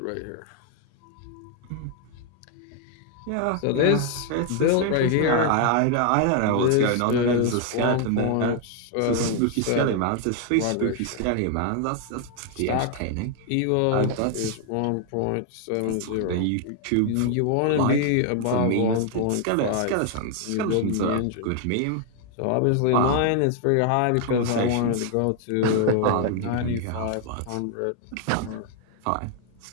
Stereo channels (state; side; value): different; both; correlation 0.00